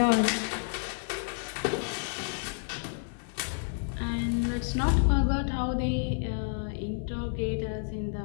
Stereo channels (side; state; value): right; silent; 58 dB below the other